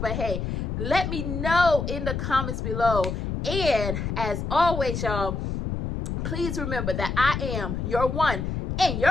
hey, let me know in the comments below. And as always, y'all, please remember that I am your one and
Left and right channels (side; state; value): left; noise; rumble, 3 dB below the sound